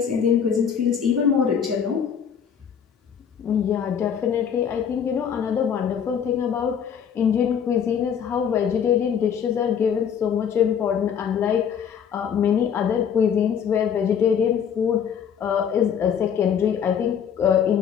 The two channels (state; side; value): quieter; right; 7.8 dB